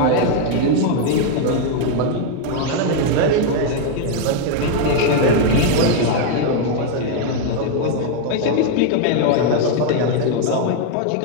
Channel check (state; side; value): different; both; correlation 0.00